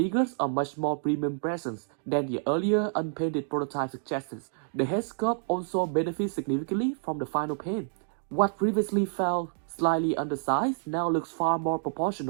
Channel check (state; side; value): silent; left; digital silence